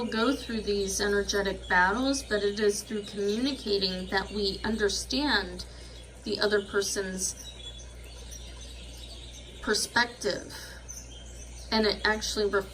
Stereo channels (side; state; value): both; identical; correlation 1.00